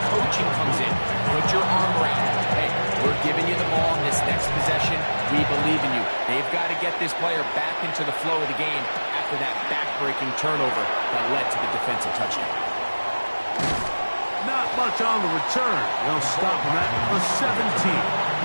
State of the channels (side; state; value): both; inverted; correlation -1.00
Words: coaching comes in. Put your arm around him. Hey, we're giving you the ball in this next possession. We believe in you. They've got to get this player back into the flow of the game after that back-breaking turnover that led to the defensive touchdown. Not much on the return. They'll stop him at the 17.